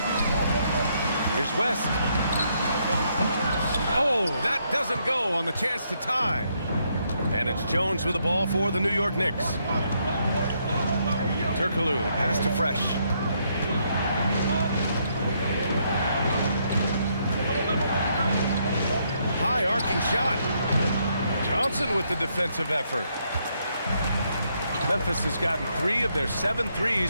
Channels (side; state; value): both; inverted; correlation -0.74